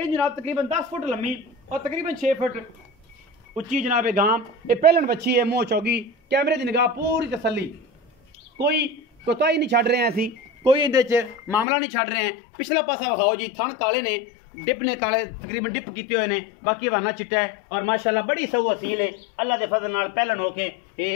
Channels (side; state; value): right; drops out; at 11.7 s